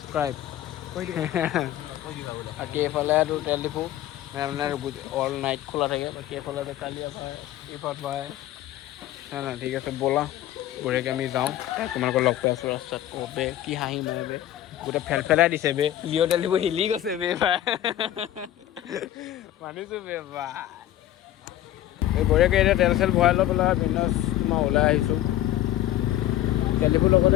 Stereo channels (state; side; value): quieter; right; 13.1 dB